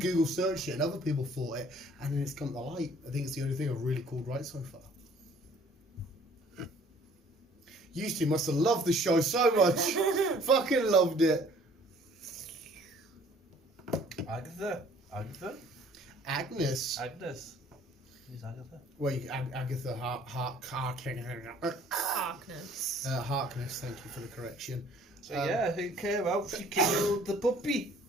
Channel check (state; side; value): normal; both; correlation 0.55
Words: searched it, and other people thought it, and then it's come to light. I think it's the only thing I've really called right so far. You two must have loved the show so much. Fucking loved it. Agatha. Agnes. Who's Agatha? Wait, Agatha Harkness. Harkness, thank you for the correction. So who came out? She killed the puppy.